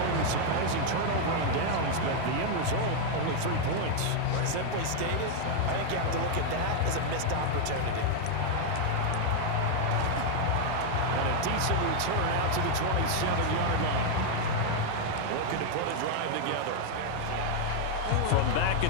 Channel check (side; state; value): both; different; correlation 0.00